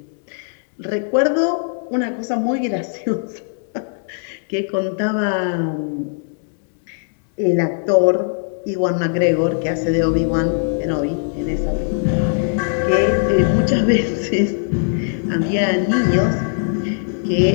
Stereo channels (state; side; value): silent; right; digital silence